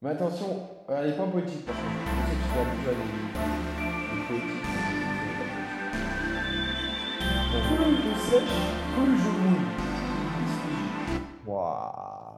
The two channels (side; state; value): both; identical; correlation 1.00